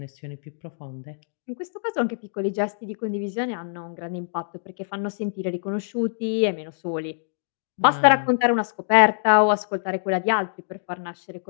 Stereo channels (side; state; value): right; silent; digital silence